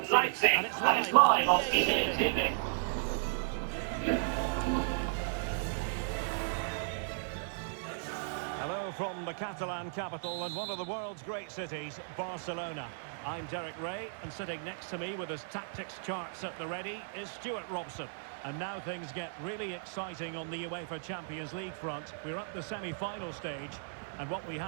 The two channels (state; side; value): silent; left; digital silence